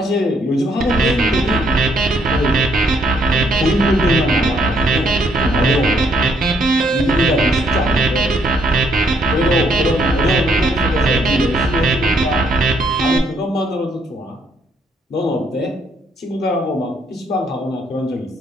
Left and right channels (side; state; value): both; normal; correlation 0.70